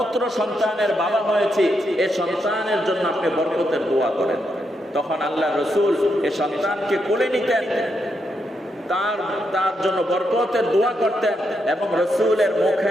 সন্তানের বাবা হয়েছি, এই সন্তানের জন্য আপনি বরকতের দোয়া করেন। তখন আল্লাহ রসুল এ সন্তানকে কোলে নিতেন, তার জন্য বরকতের দোয়া করতেন, এবং রসুলের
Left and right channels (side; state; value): both; normal; correlation 0.81